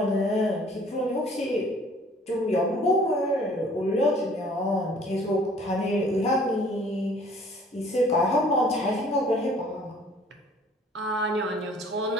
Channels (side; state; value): both; normal; correlation 0.54